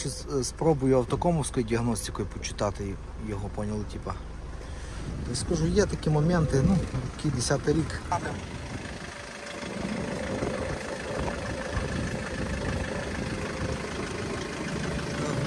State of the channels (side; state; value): both; identical; correlation 1.00